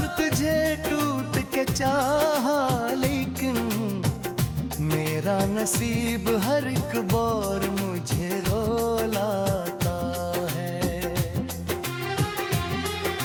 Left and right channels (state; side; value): identical; both; correlation 1.00